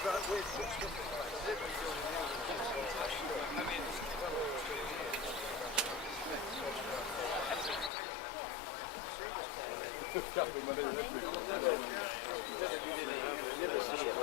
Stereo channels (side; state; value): right; drops out; at 7.9 s